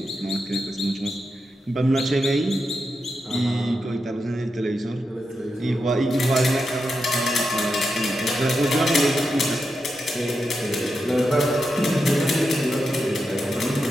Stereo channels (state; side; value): normal; both; correlation 0.87